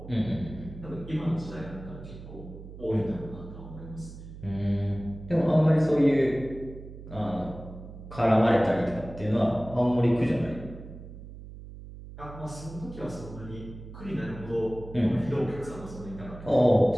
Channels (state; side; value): noise; right; hum, 14 dB below the sound